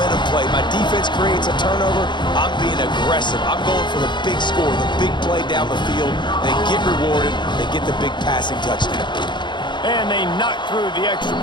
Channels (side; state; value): right; late; 0.22 ms